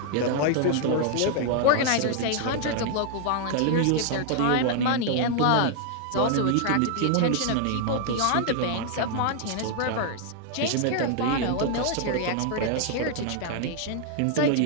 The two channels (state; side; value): different; both; correlation 0.00